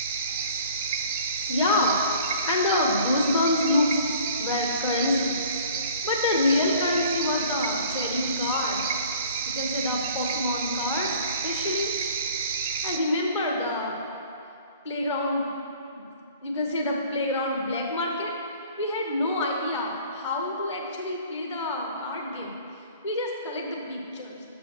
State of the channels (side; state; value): both; inverted; correlation -0.50